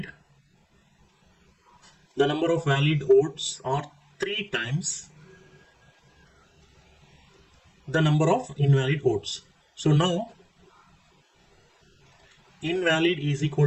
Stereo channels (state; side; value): identical; both; correlation 1.00